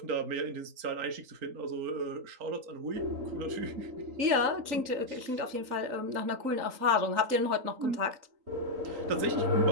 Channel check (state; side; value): late; left; 3.8 ms